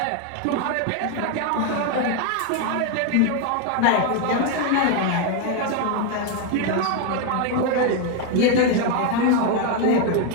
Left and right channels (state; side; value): different; both; correlation 0.01